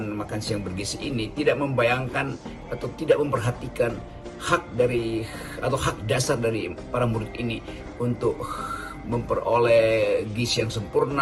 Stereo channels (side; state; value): both; identical; correlation 1.00